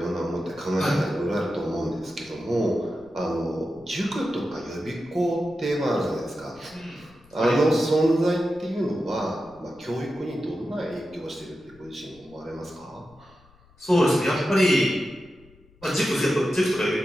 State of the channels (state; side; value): noise; left; rumble, 28 dB below the sound